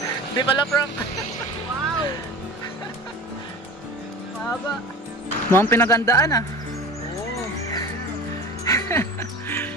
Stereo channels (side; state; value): both; normal; correlation 0.35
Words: Di pala prank. Wow. Mahaba. Mukhang pinagandaan ah. Oo.